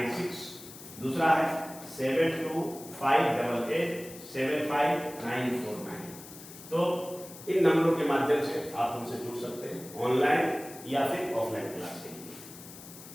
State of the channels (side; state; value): left; noise; hiss, 16 dB below the sound